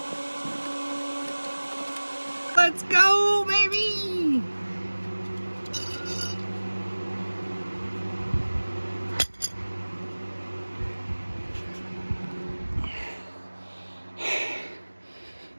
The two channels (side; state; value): both; inverted; correlation -1.00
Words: Let's go, baby!